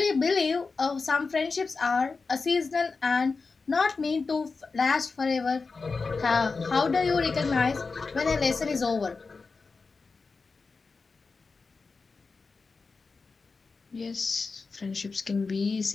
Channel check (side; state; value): right; quieter; 4.4 dB